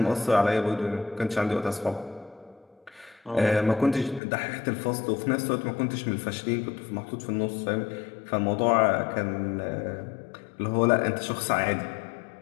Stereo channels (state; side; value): drops out; right; at 4.2 s